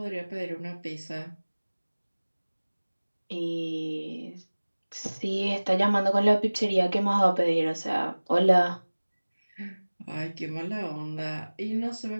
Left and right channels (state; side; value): inverted; both; correlation -1.00